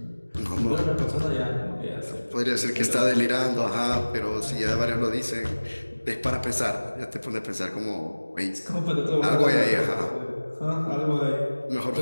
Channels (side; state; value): both; inverted; correlation -1.00